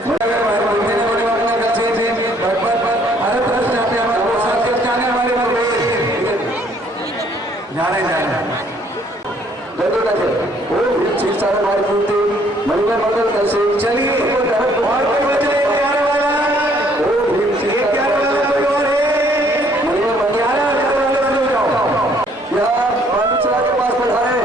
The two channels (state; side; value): normal; both; correlation 0.63